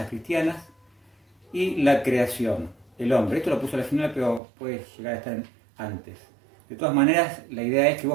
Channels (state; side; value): drops out; left; at 4.4 s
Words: cristianas y la creación, el hombre. Esto lo puse al final, pero puede llegar a estar antes. De todas maneras, la idea es que